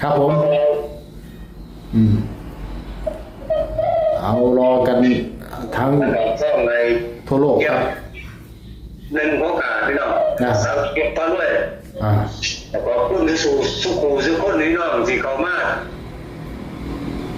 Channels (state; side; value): identical; both; correlation 1.00